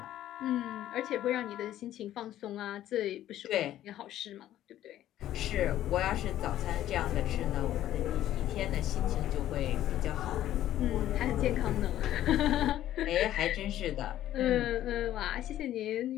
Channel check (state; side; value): quieter; right; 12.7 dB